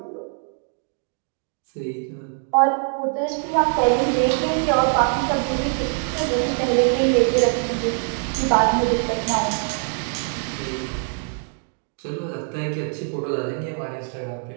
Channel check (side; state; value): left; silent; 56 dB below the other